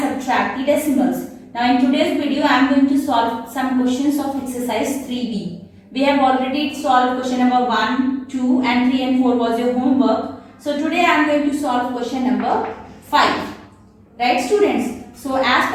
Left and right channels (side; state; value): both; identical; correlation 1.00